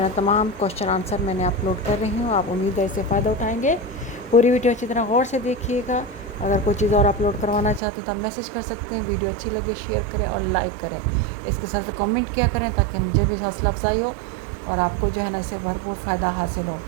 है तमाम क्वेश्चन आंसर मैंने अपलोड कर रही हूँ। आप उम्मीद है इससे फ़ायदा उठाएंगे। पूरी वीडियो अच्छी तरह गौर से देखिएगा। अगर कोई चीज़ और अपलोड करवाना चाहते हो तो आप मैसेज कर सकते हैं। वीडियो अच्छी लगे शेयर करें और लाइक करें। इसके साथ कमेंट किया करें ताकि मुझे भी हौसला अफजाई हो और आपको जो है ना इससे भरपूर फ़ायदा हासिल हो।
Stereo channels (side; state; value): left; drops out; at 7.8 s